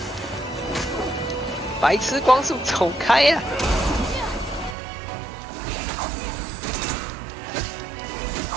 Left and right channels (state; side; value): drops out; left; at 4.8 s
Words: 白痴光速，走开呀！